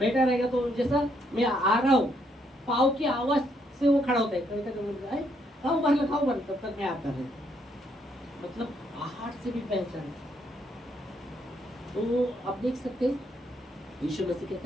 रहेगा तो जैसा मैं आ रहा हूँ पाँव की आवाज से वो खड़ा होता है, कभी तक खाओ बंद तब तक मैं आता रहता। मतलब आहार से भी पहचान। तो आप देख सकते हैं यीशु मसीह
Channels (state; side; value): normal; both; correlation 0.73